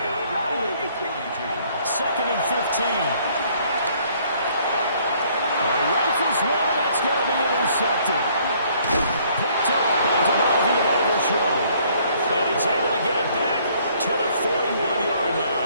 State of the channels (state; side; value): inverted; both; correlation -0.62